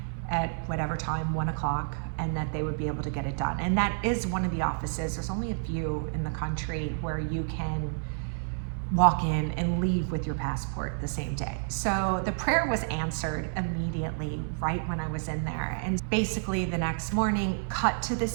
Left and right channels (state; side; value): silent; left; 58 dB below the other